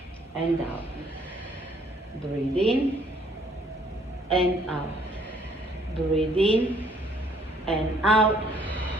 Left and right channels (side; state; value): both; normal; correlation 0.62